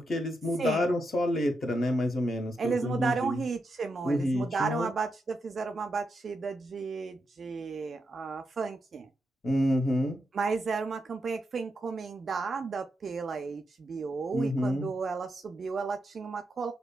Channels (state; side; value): normal; both; correlation 0.84